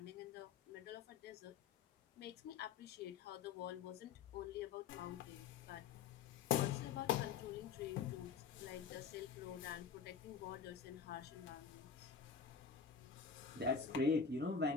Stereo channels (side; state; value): right; quieter; 6.3 dB